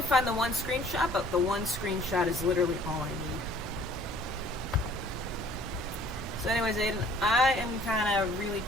find the one screenshot, but the one screenshot is literally all I need. So anyways, Aiden, I am kind of really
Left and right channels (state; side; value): normal; both; correlation 0.55